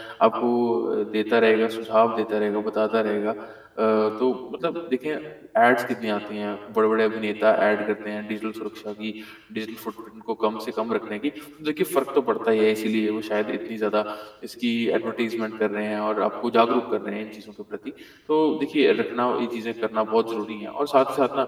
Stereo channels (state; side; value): identical; both; correlation 1.00